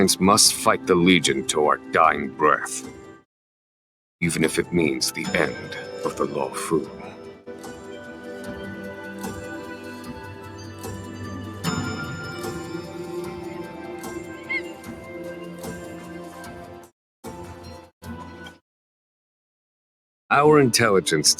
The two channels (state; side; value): identical; both; correlation 1.00